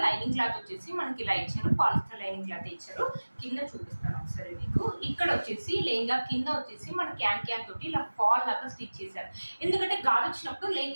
లైనింగ్ క్లాత్ వచ్చేసి మనకి ఇలా ఇచ్చారు. పాలిస్టర్ లైనింగ్ క్లాత్ ఇచ్చారు. కింద చూపిస్తాను ఒకసారి మీకు. ఇక్కడ వచ్చేసి లెహంగా కింద వచ్చేసి మన క్యాన్ తోటి ఇలా ఫాల్ లాగా స్టిచ్ చేశారు. ఎందుకంటే గాలి వచ్చినప్పుడు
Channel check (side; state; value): both; inverted; correlation -1.00